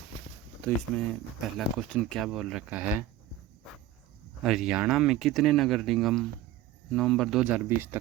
तो इसमें पहला क्वेश्चन क्या बोल रखा है, हरियाणा में कितने नगर निगम नवंबर 2020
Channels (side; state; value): left; quieter; 12.4 dB